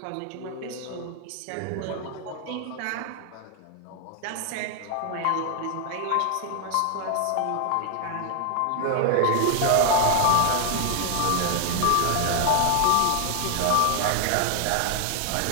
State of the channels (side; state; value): both; different; correlation 0.00